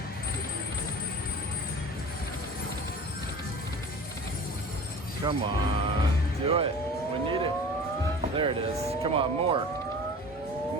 Come on, do it. We need it. There it is. Come on, more.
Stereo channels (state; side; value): normal; both; correlation 0.39